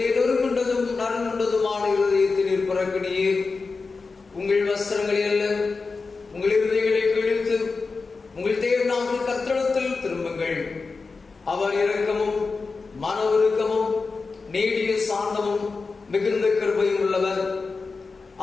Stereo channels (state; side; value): quieter; right; 4.3 dB